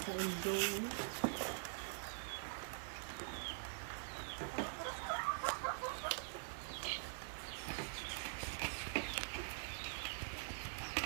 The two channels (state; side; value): silent; left; digital silence